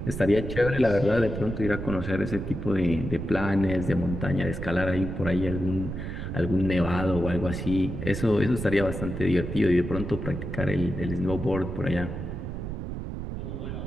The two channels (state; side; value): noise; right; rumble, 6 dB below the sound